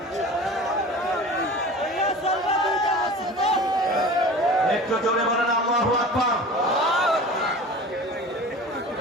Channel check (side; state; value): both; normal; correlation 0.38